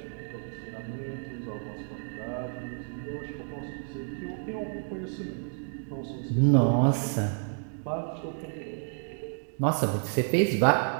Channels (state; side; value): silent; left; 58 dB below the other